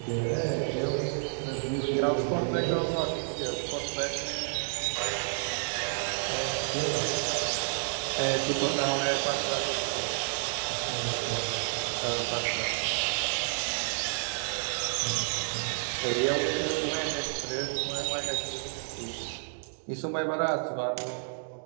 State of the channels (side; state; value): left; silent; digital silence